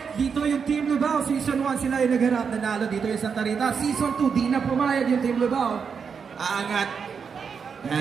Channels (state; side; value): quieter; left; 6.2 dB